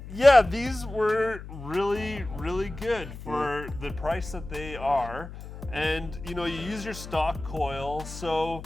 yeah, these were really, really good for the price that they are. And you know, you use your stock coil. So,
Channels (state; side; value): noise; left; hum, 12 dB below the sound